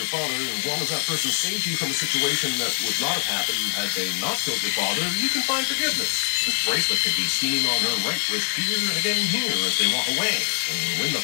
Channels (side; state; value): right; silent; digital silence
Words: father, as long as that person saved you from a situation that would not have happened had they not killed your father, you can find forgiveness. This bracelet can be seen on her right wrist here and again here as they walk away. And when the